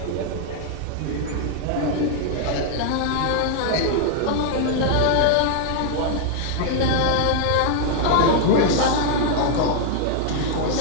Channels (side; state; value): both; different; correlation 0.00